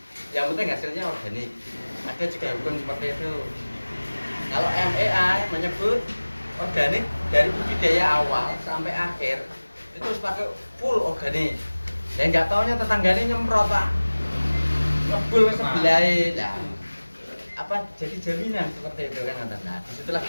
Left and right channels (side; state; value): both; inverted; correlation -1.00